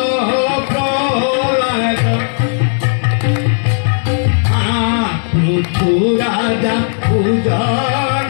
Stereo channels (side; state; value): right; silent; digital silence